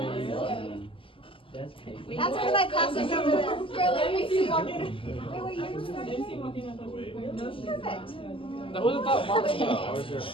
That's one of my classes over there. Wait, you perfect. That wasn't that long Perfect. ago. That was her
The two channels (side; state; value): right; late; 0.25 ms